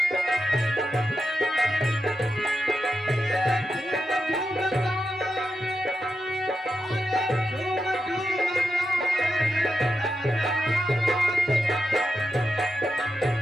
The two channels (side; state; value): both; normal; correlation 0.88